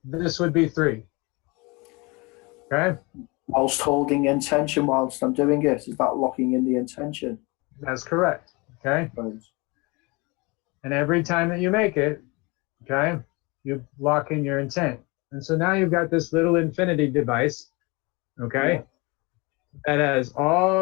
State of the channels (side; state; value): right; quieter; 26.6 dB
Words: this would be 3. Okay. Whilst holding intention whilst I'm doing it, is that locking in the intention? That's correct. Okay. Right. And every time that you make it, okay, you lock in your intent. And so now you've got this little infinity device, okay, that has